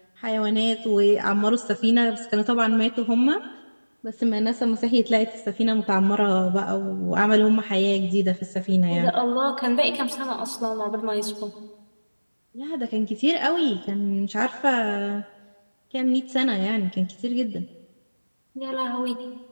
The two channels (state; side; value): inverted; both; correlation -1.00